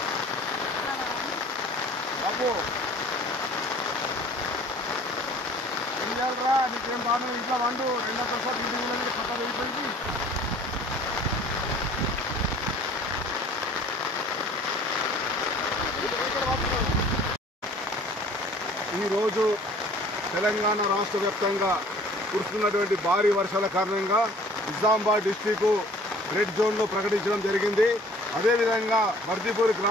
बाबू రా నీకేం బాగా ఇంట్లో వండు రెండో ప్రసాద్ ఇంటి పక్క వెళ్ళిపోయింది. ఈరోజు తెలంగాణ రాష్ట్ర వ్యాప్తంగా కురుస్తున్నటువంటి భారీ వర్షాల కారణంగా నిజామాబాద్ డిస్టిక్ రెడ్ జోన్లో ప్రకటించడం జరిగింది. అదేవిధంగా బర్దిపూర్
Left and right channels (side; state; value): both; normal; correlation 0.51